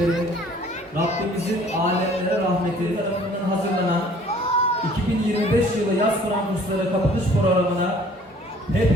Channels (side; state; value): both; normal; correlation 0.54